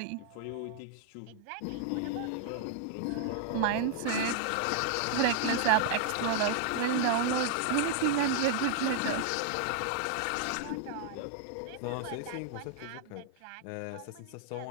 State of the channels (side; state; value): both; different; correlation -0.01